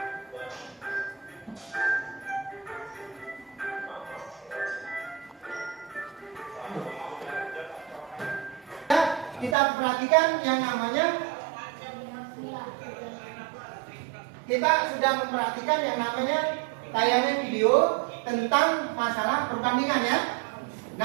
Kita perhatikan yang namanya, kita sudah memperhatikan yang namanya tayangan video tentang masalah perbandingan ya.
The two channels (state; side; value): drops out; left; at 9.6 s